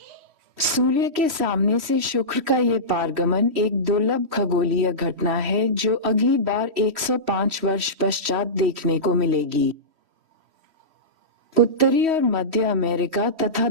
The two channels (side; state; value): left; late; 3.1 ms